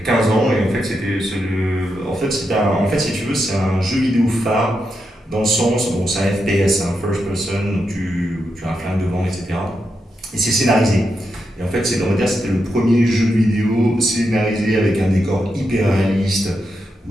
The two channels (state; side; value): normal; both; correlation 0.85